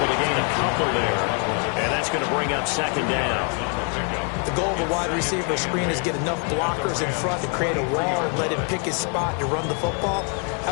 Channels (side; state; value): right; quieter; 39.4 dB